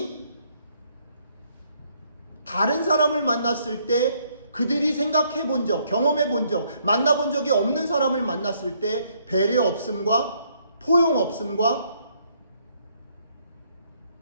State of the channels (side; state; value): both; inverted; correlation -0.69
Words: 다른 사람을 만났을 때 그들이 생각해 본 적, 경험해 본 적, 만나본 적이 없는 사람을 만났을 때 배려 없음과 포용 없음과